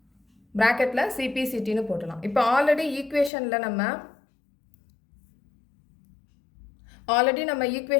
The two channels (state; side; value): drops out; right; at 3.3 s